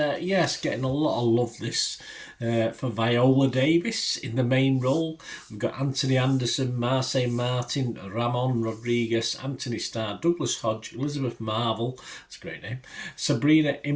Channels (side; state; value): both; identical; correlation 1.00